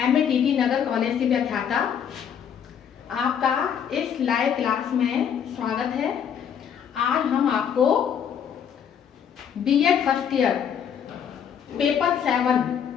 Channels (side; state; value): right; quieter; 8.1 dB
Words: MATT नगर college की व्याख्याता आपका इस लाइव क्लास में स्वागत है। आज हम आपको B.Ed first year paper 7